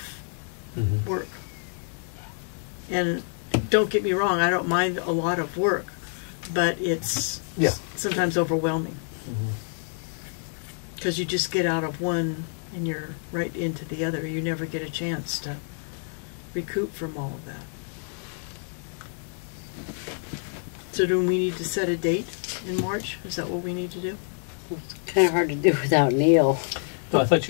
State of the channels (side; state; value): right; silent; 60 dB below the other